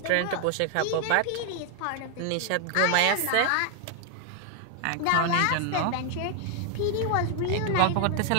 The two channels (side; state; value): both; different; correlation 0.00